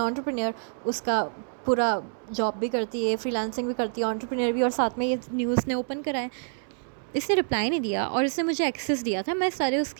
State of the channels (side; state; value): left; silent; 60 dB below the other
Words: उसका पूरा जॉब भी करती है, फ्रीलांसिंग भी करती है, एंटरप्रेन्योर भी, और साथ में ये न्यूज़ ने ओपन करा है। इसने रिप्लाई नहीं दिया और इसने मुझे एक्सेस दिया था, मैं सारे